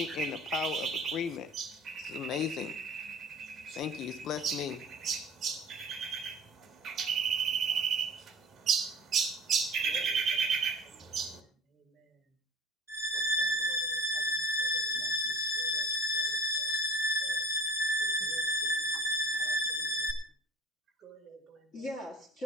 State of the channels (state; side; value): normal; both; correlation 0.43